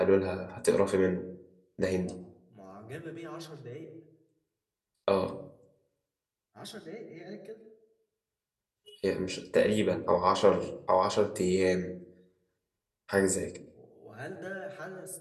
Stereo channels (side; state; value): both; identical; correlation 1.00